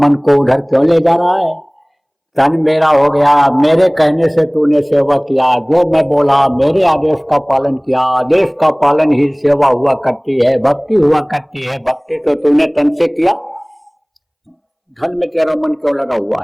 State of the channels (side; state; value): both; identical; correlation 1.00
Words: मन को उधर क्यों ले जा रहा है? तन मेरा हो गया, मेरे कहने से तूने सेवा किया, जो मैं बोला मेरे आदेश का पालन किया, आदेश का पालन ही सेवा हुआ करती है, भक्ति हुआ करती है, भक्ति तो तूने तन से किया, धन में तेरा मन क्यों लगा